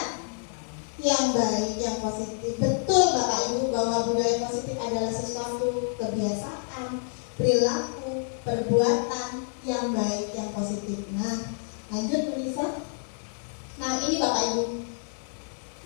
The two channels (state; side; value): silent; right; 59 dB below the other